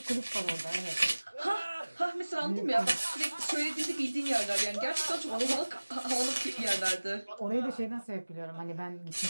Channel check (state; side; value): inverted; both; correlation -1.00